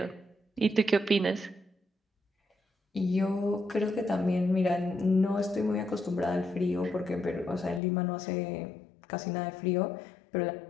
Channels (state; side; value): drops out; right; at 7.8 s